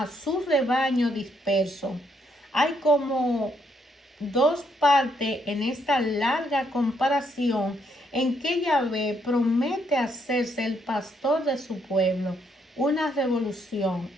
su rebaño disperso. Hay como dos partes en esta larga comparación en que Yahvé promete hacerse el pastor de su pueblo, una revolución,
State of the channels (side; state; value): both; normal; correlation 0.73